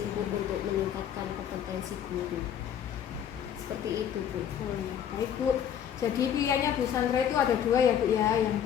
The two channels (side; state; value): right; quieter; 9.2 dB